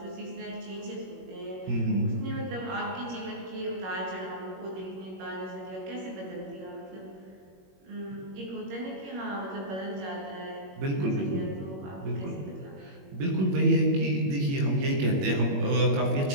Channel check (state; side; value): late; left; 21 ms